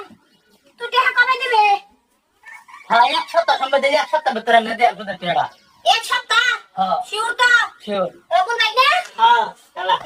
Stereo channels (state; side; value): identical; both; correlation 1.00